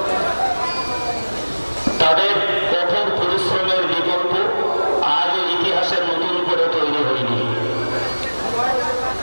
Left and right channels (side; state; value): both; inverted; correlation -1.00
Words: তাদের কঠোর পরিশ্রমের বিকল্প আজ ইতিহাসের নতুন করে তৈরি হয়নি।